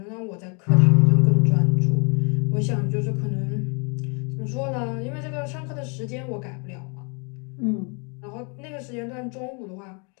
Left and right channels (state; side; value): quieter; right; 35.3 dB